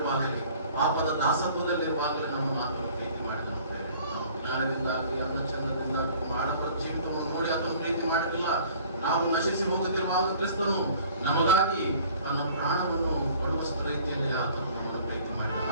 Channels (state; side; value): inverted; both; correlation -0.51